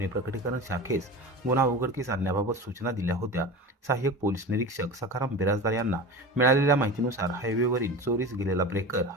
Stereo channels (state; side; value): normal; both; correlation 0.31